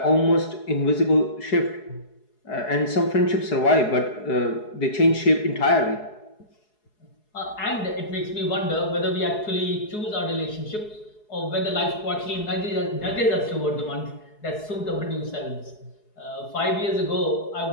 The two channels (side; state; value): right; late; 4.7 ms